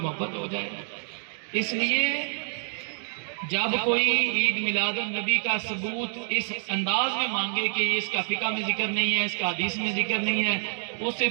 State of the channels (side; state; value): left; silent; digital silence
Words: محبت ہو جائے. اس لیے جب کوئی عید میلاد النبی کا ثبوت اس انداز میں مانگے کہ اس کا فقہ میں ذکر نہیں ہے، اس کا حدیث میں ذکر نہیں ہے، اس سے